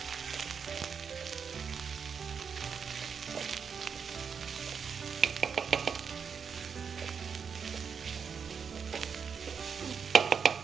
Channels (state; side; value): quieter; left; 6.4 dB